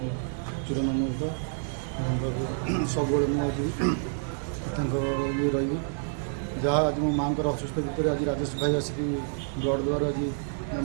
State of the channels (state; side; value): silent; left; 59 dB below the other